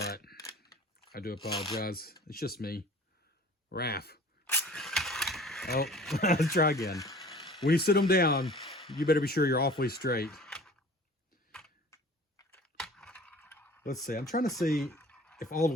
I do apologize. It's just me. Raph. Oh, let's try again. When you sit them down, you better be sure you're awfully straight. Let's see. I'm trying to see if all the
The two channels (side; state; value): both; normal; correlation 0.45